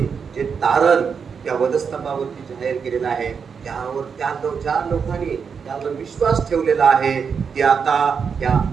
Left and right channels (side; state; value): left; quieter; 6.2 dB